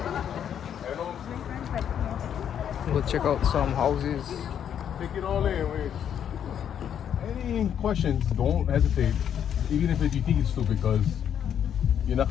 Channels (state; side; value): quieter; right; 9.0 dB